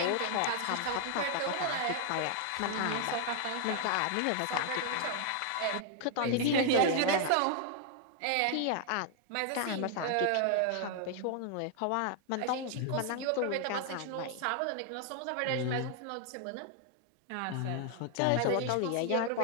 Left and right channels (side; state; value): both; different; correlation 0.00